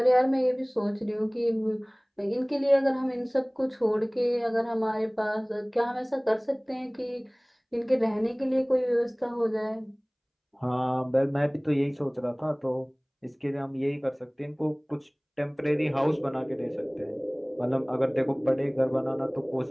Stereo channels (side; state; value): both; identical; correlation 1.00